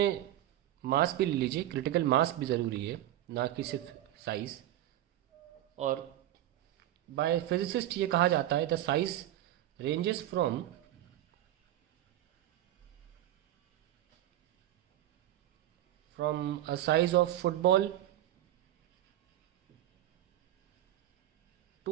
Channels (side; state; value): left; quieter; 13.3 dB